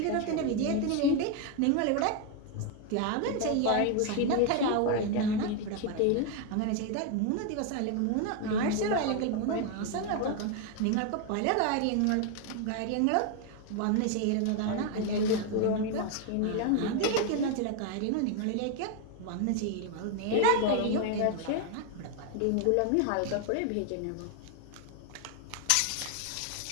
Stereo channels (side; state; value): both; different; correlation 0.01